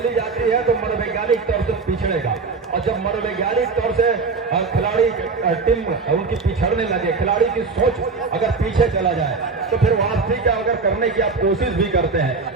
जाती है तो मनोवैज्ञानिक तौर से पिछड़ेगा, और जब मनोवैज्ञानिक तौर से खिलाड़ी टीम उनकी पिछड़ने लगे, खिलाड़ी की सोच अगर पीछे चला जाए, तो फिर वापसी क्या अगर करने की आप कोशिश भी करते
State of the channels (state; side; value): quieter; left; 4.4 dB